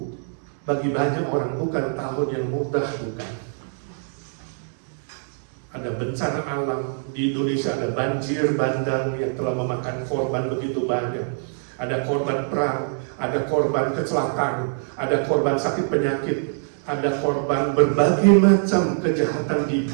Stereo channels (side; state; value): left; silent; digital silence